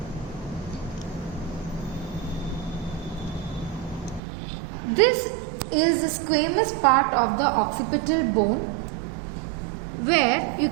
This is the squamous part of the occipital bone where you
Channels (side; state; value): left; drops out; at 4.2 s